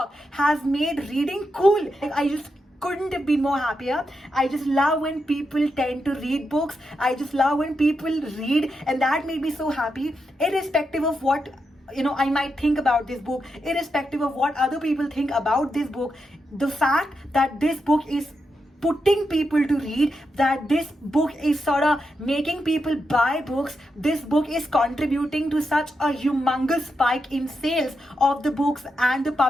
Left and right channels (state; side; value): normal; both; correlation 0.85